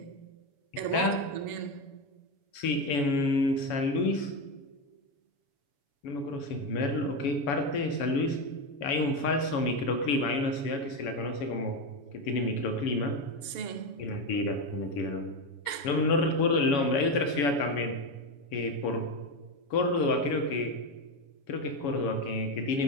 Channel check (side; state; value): right; late; 7.1 ms